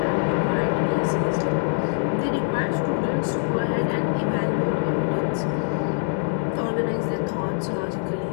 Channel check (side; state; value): right; silent; 63 dB below the other